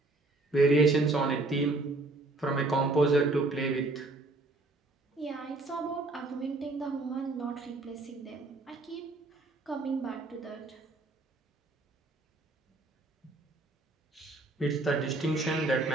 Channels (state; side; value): quieter; left; 3.1 dB